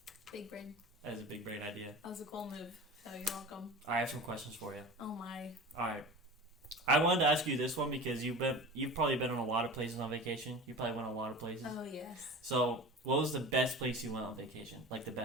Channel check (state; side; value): normal; both; correlation 0.34